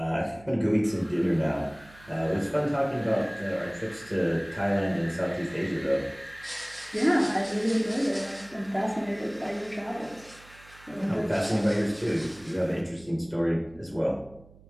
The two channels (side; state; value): right; noise; hum, 24 dB below the sound